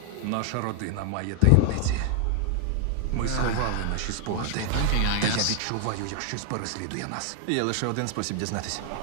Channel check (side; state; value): both; different; correlation 0.00